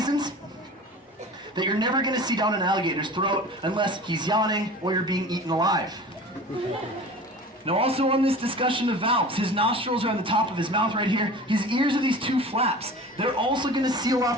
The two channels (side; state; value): both; normal; correlation 0.38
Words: that you're never going to see down an alligator's throat unless he's yawning or you're being eaten alive. Now also on this discussion of valves, his nostrils are on the top of his mouth right here. His ears are these two flaps. They're also going to seal